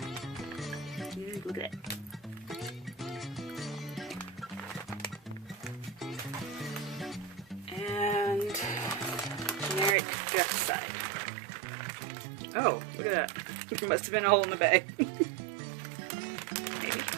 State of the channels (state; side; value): drops out; left; at 10.0 s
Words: Look at it. And generic direct side. Oh, look at that. There must have been a hole in the bag. Maybe.